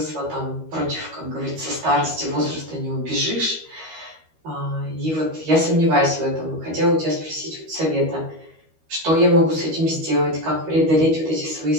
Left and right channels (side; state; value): left; late; 13 ms